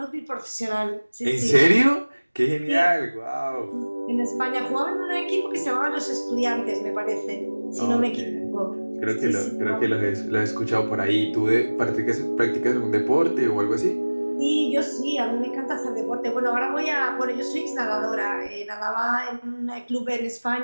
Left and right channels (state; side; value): inverted; both; correlation -1.00